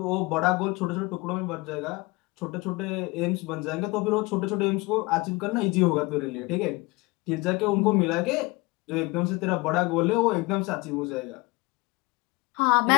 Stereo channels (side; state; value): right; quieter; 24.4 dB